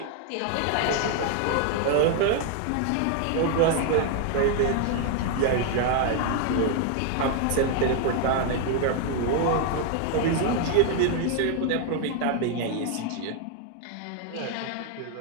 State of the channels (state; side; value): different; both; correlation 0.00